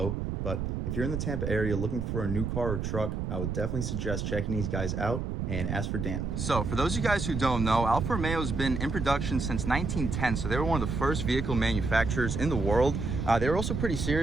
but if you're in the Tampa area looking for a new car or truck, I would definitely suggest checking these guys out. And ask for Dan. So for those of you guys who don't know, Alfa Romeo has been in production since 1910, so they were one of the first vehicle manufacturers in the world. They were also pretty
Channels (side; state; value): right; noise; rumble, 2 dB below the sound